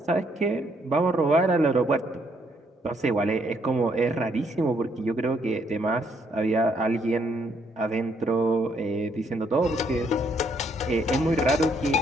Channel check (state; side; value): normal; both; correlation 0.71